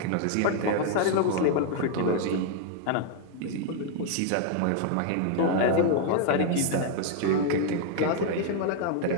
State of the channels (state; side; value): different; both; correlation -0.01